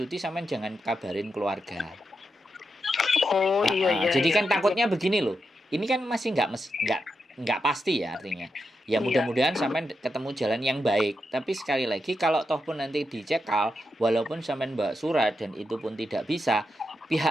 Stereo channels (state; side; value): normal; both; correlation 0.86